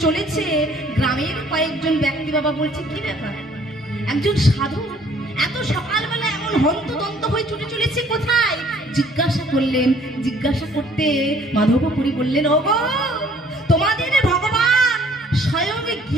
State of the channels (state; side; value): normal; both; correlation 0.58